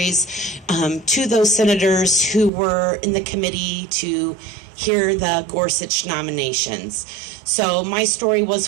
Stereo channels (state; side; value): drops out; left; at 2.5 s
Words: to those senators who were in the committee to hear the Gorsuch nominations. So my story